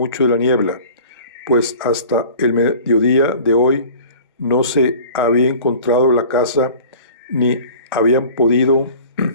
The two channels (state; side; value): inverted; both; correlation -0.44